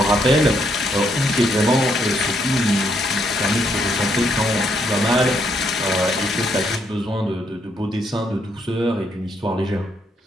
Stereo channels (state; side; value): normal; both; correlation 0.74